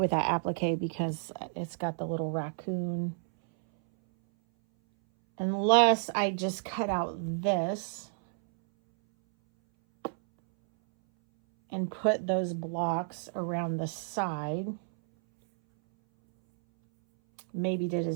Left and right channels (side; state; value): left; silent; 57 dB below the other